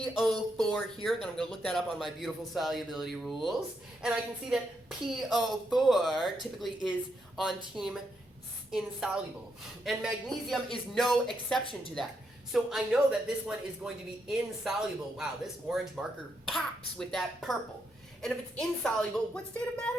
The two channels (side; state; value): both; normal; correlation 0.80